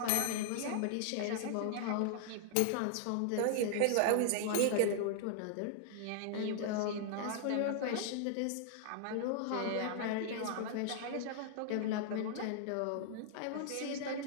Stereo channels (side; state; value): both; different; correlation -0.01